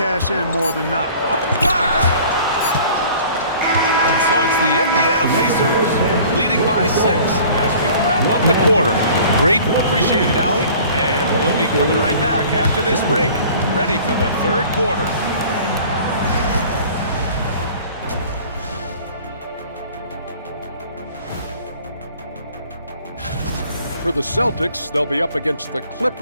in more than not. And so it's the Indiana Pacers leading by 6 as we wrap up the quarter. Great, appreciated, Allie. And we'll be coming right back after this break, ready for the third quarter. For the Celtics, they'll be up against the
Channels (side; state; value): both; inverted; correlation -0.48